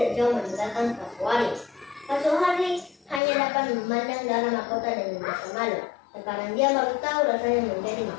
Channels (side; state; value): right; drops out; at 3.2 s